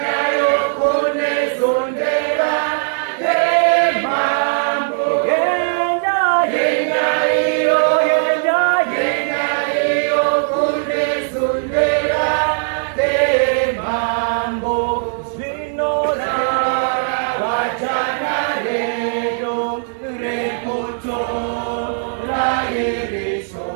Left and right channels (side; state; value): left; silent; digital silence